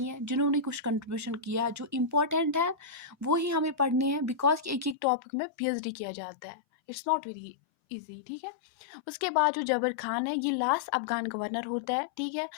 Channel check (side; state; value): right; drops out; at 5.0 s